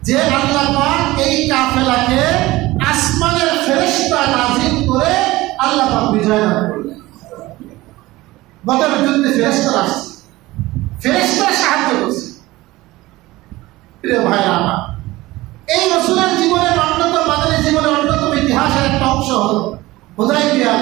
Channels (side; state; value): left; quieter; 18.8 dB